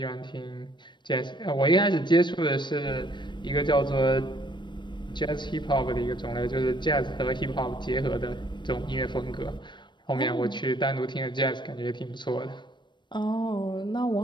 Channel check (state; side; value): late; right; 0.22 ms